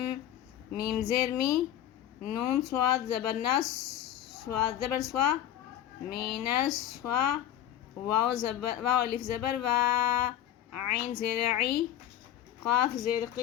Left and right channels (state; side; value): quieter; right; 11.7 dB